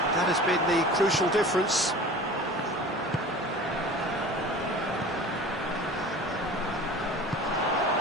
that has been the crucial difference.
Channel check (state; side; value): normal; both; correlation 0.39